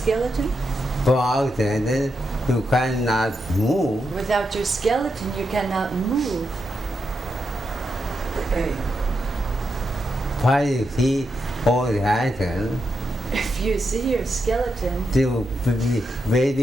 Without skeleton, you cannot move. Without your skeleton, you cannot move. Why you see all the skeleton, If you see your skeleton, you will be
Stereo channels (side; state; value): both; normal; correlation 0.84